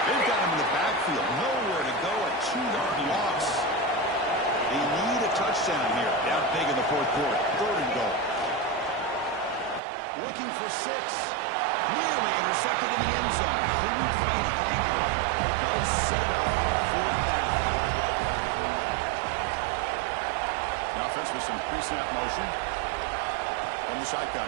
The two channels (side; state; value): left; drops out; at 9.8 s